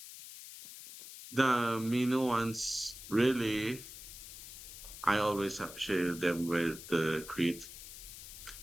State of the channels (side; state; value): left; noise; hiss, 13 dB below the sound